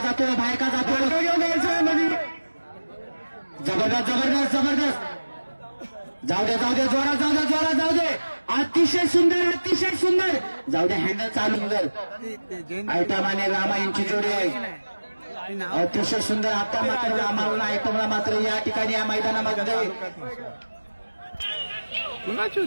जबरदस्त जाऊ दे जोरात जाऊ दे. अतिशय सुंदर जाऊ दे. हँडल चालू सुंदर. आयटम आणि रामा यांची जोडी आहे. अतिशय सुंदर. आता मात्र रामाला आयटमला मात्र या ठिकाणी या मैदानामध्ये कुणाची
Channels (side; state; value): both; inverted; correlation -1.00